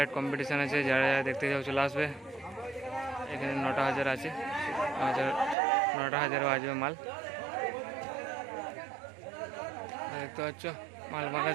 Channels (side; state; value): left; drops out; at 5.6 s